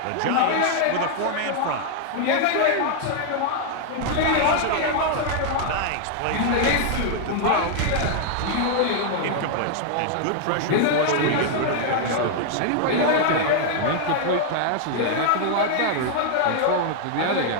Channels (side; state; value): both; different; correlation 0.00